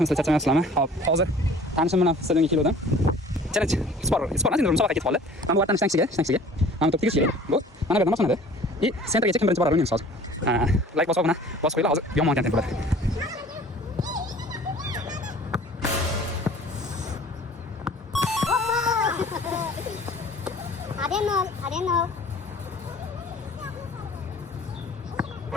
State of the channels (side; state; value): both; normal; correlation 0.48